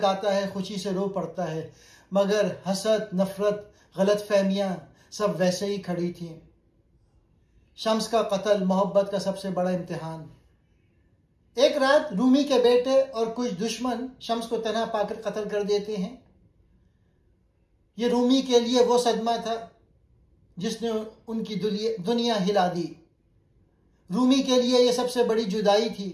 है, खुशी से रो पड़ता है, मगर हसद, नफरत, गलत फहमियां सब वैसे ही खड़ी थीं। शम्स का कत्ल मोहब्बत का सबसे बड़ा इम्तिहान। एक रात रूमी के बेटे और कुछ दुश्मन शम्स को तन्हा पाकर कत्ल कर देते हैं। ये रूमी के लिए वो सदमा था जिसने उनकी दुनिया हिला दी। रूमी के लिए ये सबसे बड़ी जुदाई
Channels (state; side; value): identical; both; correlation 1.00